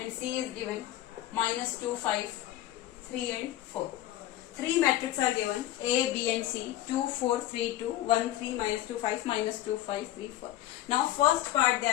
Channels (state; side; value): quieter; right; 13.9 dB